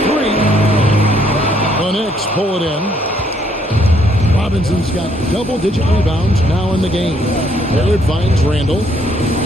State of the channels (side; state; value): both; normal; correlation 0.68